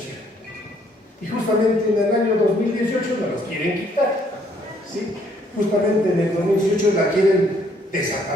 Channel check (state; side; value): normal; both; correlation 0.66